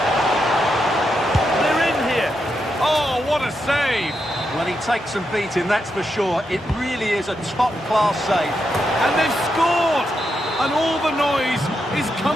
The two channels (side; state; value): both; normal; correlation 0.84